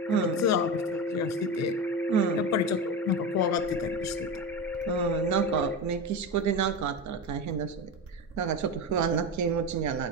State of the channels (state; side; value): normal; both; correlation 0.21